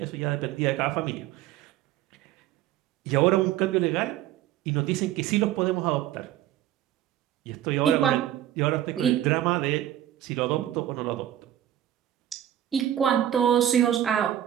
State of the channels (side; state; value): left; quieter; 12.1 dB